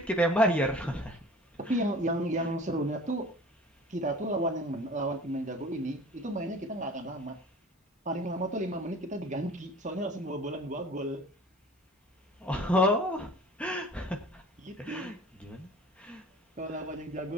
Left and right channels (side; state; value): both; normal; correlation 0.44